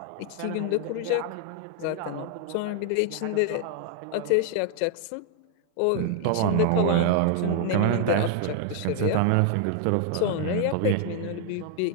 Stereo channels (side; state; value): both; different; correlation 0.00